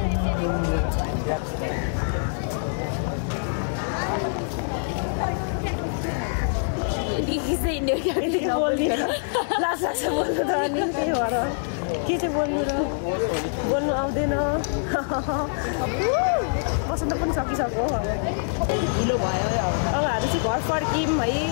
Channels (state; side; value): silent; right; 62 dB below the other